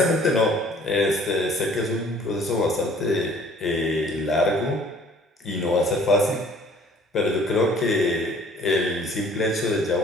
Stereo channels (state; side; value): normal; both; correlation 0.54